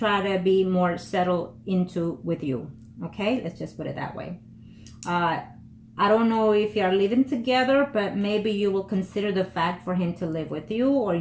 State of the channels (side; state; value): both; identical; correlation 1.00